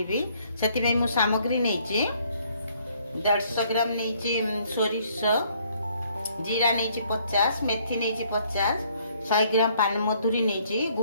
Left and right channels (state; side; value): inverted; both; correlation -0.64